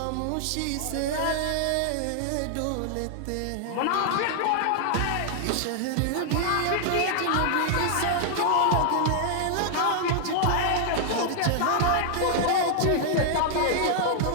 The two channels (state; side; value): different; both; correlation -0.01